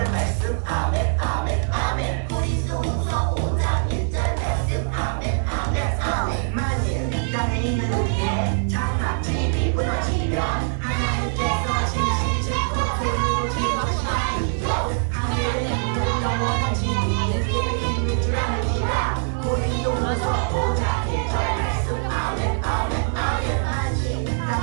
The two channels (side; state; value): left; silent; 56 dB below the other